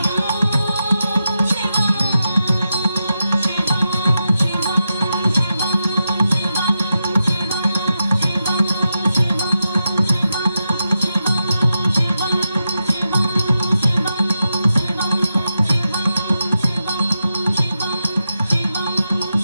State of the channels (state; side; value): inverted; both; correlation -0.88